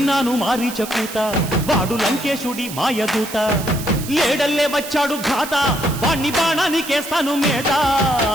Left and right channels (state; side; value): noise; right; hiss, 11 dB below the sound